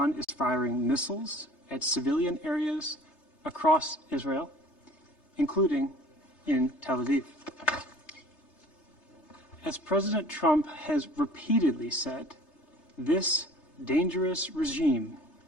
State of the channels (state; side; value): late; right; 3.3 ms